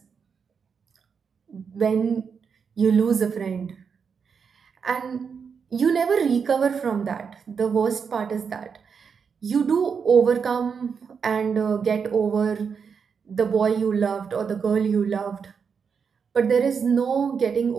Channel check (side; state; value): left; quieter; 6.2 dB